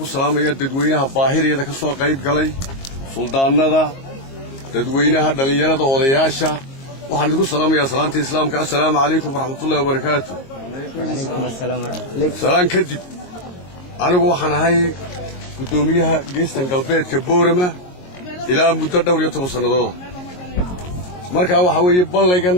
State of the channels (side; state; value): right; late; 22 ms